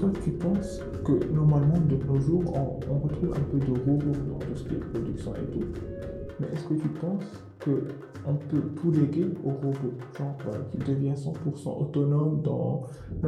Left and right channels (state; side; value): identical; both; correlation 1.00